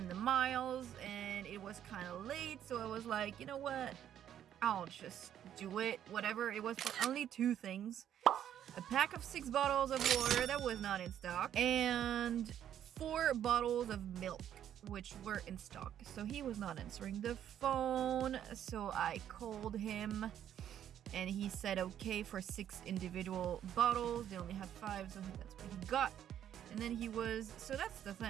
the miles, and it was kind of late, so I was like, you know what, I'll just do it. Whatever. It was for only 2 things: a pack of 6 bottles of water that was not in stock, and 4 bottles of milk, which were in stock. So he was not answering the phone, so I called him, and he said okay for 6 individual bottles. They only had 5, so that's what he got. And then so that's the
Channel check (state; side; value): quieter; left; 10.3 dB